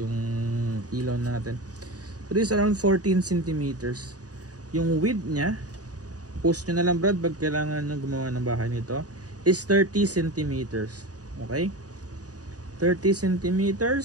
ilaw natin. So this is around 14 centimeters. Yung width niya, post nyo na lang, Brad, pag kailangan nyo gumawa ng bahay nito, is 30 centimeters. Okay? 30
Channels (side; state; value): left; late; 0.67 ms